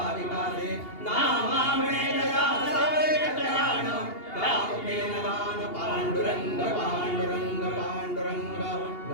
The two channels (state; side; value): late; right; 2.8 ms